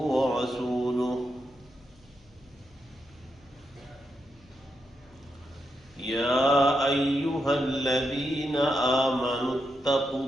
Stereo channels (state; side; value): noise; left; hum, 28 dB below the sound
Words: ورسوله يا أيها الذين آمنوا اتقوا